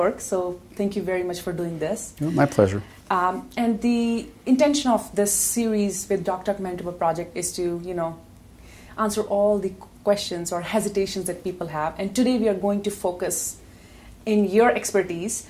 so thank you very much for doing this. Oh, my pleasure. And the intention of this series with Doc Talk Manitoba project is to, answer all the questions or hesitations that people have. And today we are going to focus in your expertise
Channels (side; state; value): both; identical; correlation 1.00